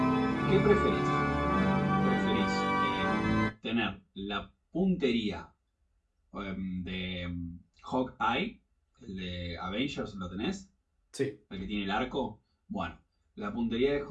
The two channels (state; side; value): identical; both; correlation 1.00